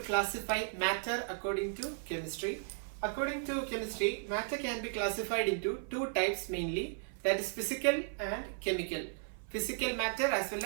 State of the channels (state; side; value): silent; left; 54 dB below the other